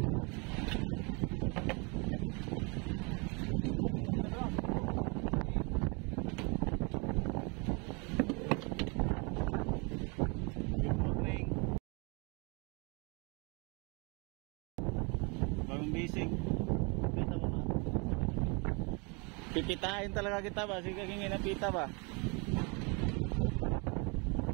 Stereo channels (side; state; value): left; quieter; 31.5 dB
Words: Good morning. Bagong bising. Pipitain talaga kita ba? Sige kang inapita ba?